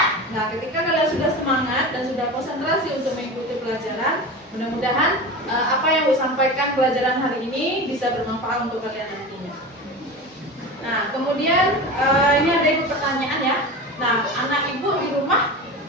Nah, ketika kalian sudah semangat dan sudah konsentrasi untuk mengikuti pelajaran, mudah-mudahan apa yang saya sampaikan pelajaran hari ini bisa bermanfaat untuk kalian nantinya. Nah, kemudian ini ada ibu pertanyaan ya. Nah, anak ibu di rumah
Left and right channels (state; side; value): normal; both; correlation 0.29